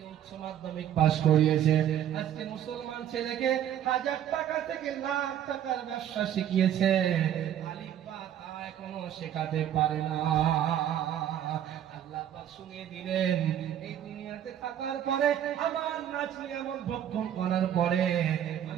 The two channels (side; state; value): left; quieter; 10.5 dB